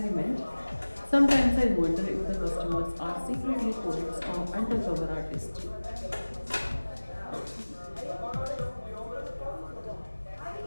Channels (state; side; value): inverted; both; correlation -1.00